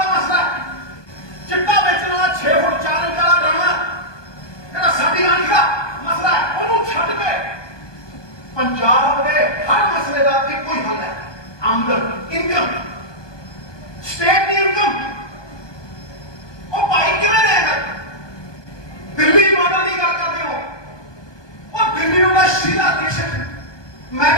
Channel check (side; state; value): right; late; 1.2 ms